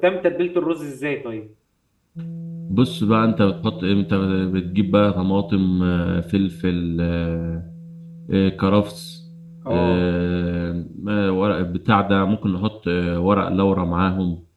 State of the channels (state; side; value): identical; both; correlation 1.00